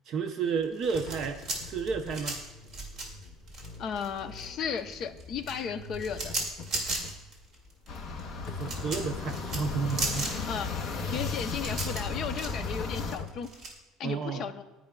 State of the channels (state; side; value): normal; both; correlation 0.51